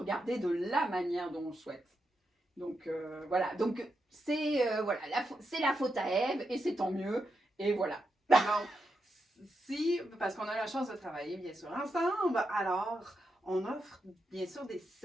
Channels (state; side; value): normal; both; correlation 0.85